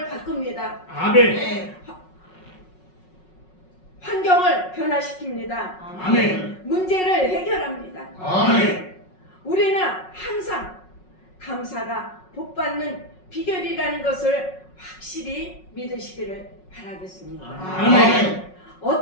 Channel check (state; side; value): late; right; 5.4 ms